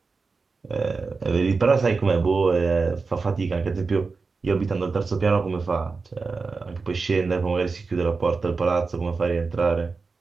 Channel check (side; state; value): left; quieter; 4.4 dB